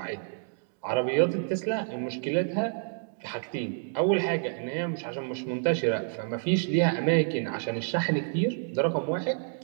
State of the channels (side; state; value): left; silent; digital silence